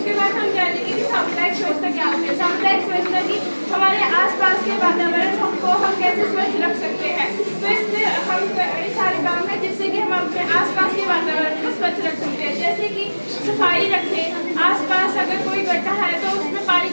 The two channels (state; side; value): inverted; both; correlation -1.00